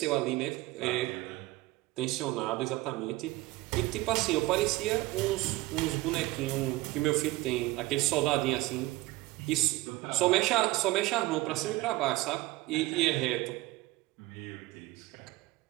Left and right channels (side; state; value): left; quieter; 19.2 dB